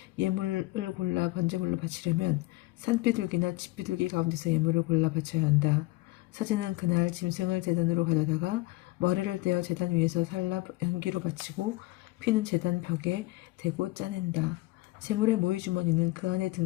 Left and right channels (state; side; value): quieter; right; 20.7 dB